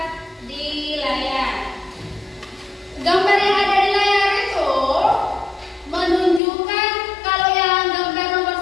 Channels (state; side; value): drops out; right; at 6.4 s